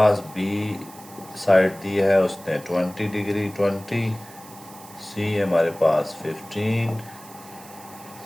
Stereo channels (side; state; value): right; noise; hiss, 20 dB below the sound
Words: बी साइड दी है उसने 20 डिग्री 20, सी हमारे पास 15,